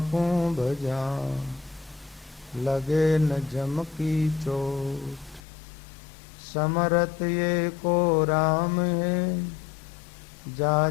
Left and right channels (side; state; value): right; drops out; at 5.4 s